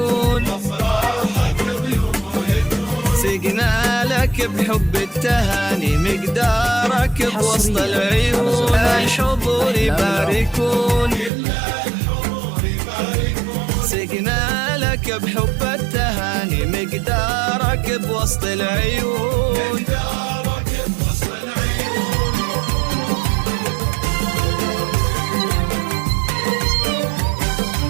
سقنا لك بحب التهاني مقدارك بوسط العيون الحضور يباركون سقنا لك بحب التهاني مقدارك بوسط العيون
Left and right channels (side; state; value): left; drops out; at 11.3 s